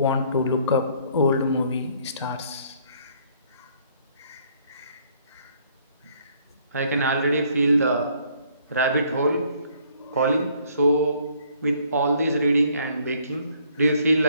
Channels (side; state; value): both; inverted; correlation -0.63